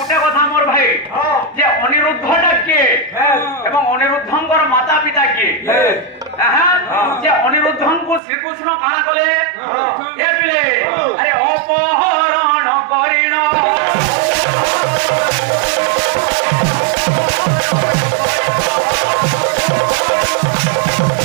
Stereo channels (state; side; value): drops out; left; at 8.2 s